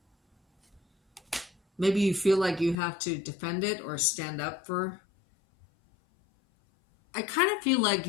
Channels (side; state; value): right; drops out; at 2.8 s